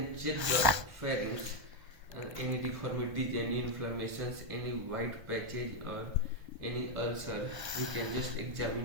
check the pharynx and any deformities, any inflammations, any white patches or any ulcer. We can just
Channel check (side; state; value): left; late; 1.2 ms